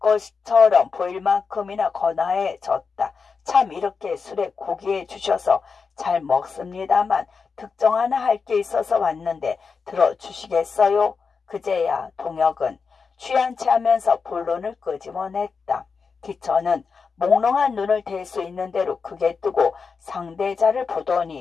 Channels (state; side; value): quieter; right; 5.2 dB